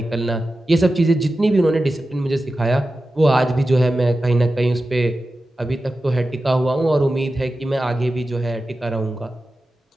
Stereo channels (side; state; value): both; normal; correlation 0.93